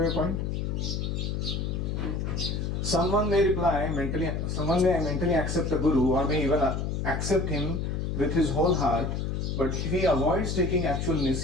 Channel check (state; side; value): noise; left; hum, 1 dB below the sound